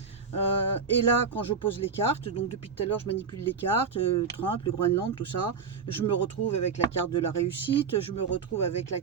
Et là, quand je pose les cartes, donc depuis tout à l'heure, je manipule les cartes, Trump, le Groenland, tout ça. Je me retrouve avec la carte de la réussite, je me retrouve avec la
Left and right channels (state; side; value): quieter; left; 5.7 dB